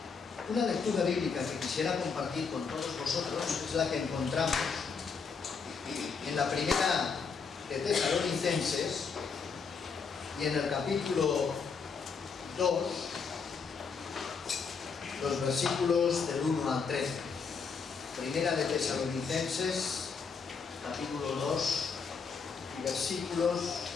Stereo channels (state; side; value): quieter; right; 5.5 dB